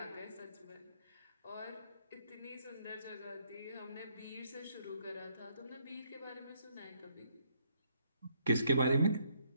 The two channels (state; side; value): inverted; both; correlation -0.71